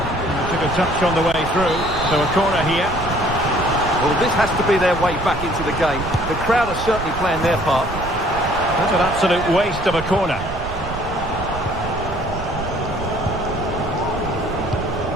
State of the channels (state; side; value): noise; right; rumble, 10 dB below the sound